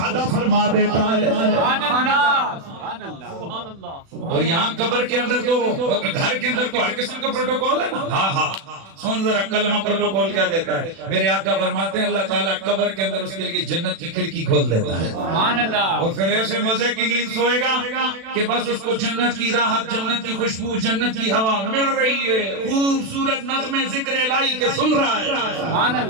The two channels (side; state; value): left; late; 36 ms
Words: فرما دیتا ہے۔ سبحان اللہ، سبحان اللہ، سبحان اللہ۔ اور یہاں قبر کے اندر تو گھر کے اندر تو ہر قسم کا پروٹوکول ہے نا۔ ہاں ہاں، سن ذرا کلمہ پروٹوکول کیا دیتا ہے۔ میرے آقا فرماتے ہیں اللہ تعالیٰ قبر کے اندر اس کے لیے جنت کی کھڑکی کھول دیتا ہے، سبحان اللہ۔ اور پھر ایسے مزے کی نیند سوئے گا کہ بس اس کو جنت کی راحت، جنت کی خوشبو، جنت کی ہوا مل رہی ہے، خوبصورت نغمے ذکر الہی کے سن رہا ہے۔ سبحان